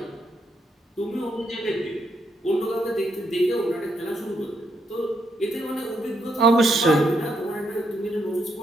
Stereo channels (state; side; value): normal; both; correlation 0.77